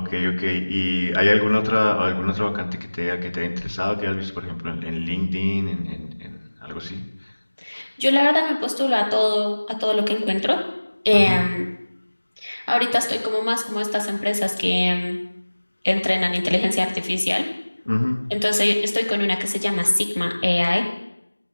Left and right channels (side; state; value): both; inverted; correlation -1.00